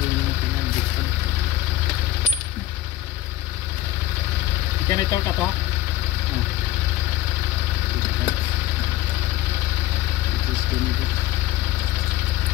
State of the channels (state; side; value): quieter; right; 14.5 dB